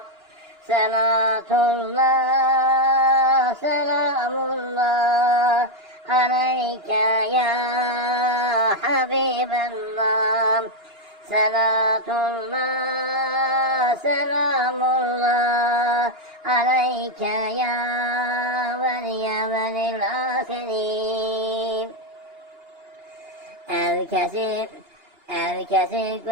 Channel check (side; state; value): left; late; 2.9 ms